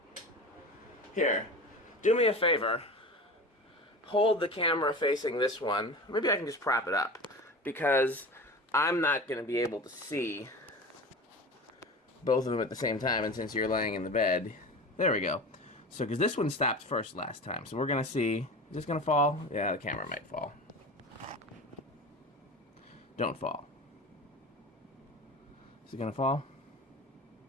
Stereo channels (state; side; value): normal; both; correlation 0.32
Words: Here, do me a favor. Hold the camera facing this one. Maybe I can just prop it up, because I'm not going to be able to see both of them at the same time, and since you're laying in the bed, there we go. So, because this one stopped first last time, so we're going to see, is this going to fall? Yeah, the camera might fall. Don't fall. Is it going to fall?